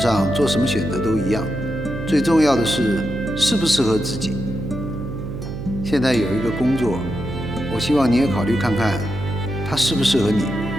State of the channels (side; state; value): right; noise; hum, 8 dB below the sound